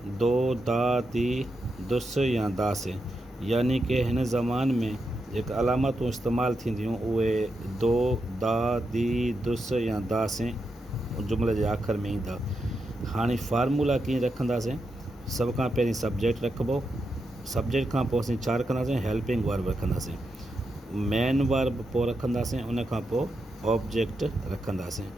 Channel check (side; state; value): both; normal; correlation 0.85